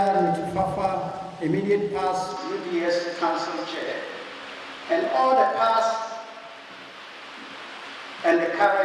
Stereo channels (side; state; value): both; identical; correlation 1.00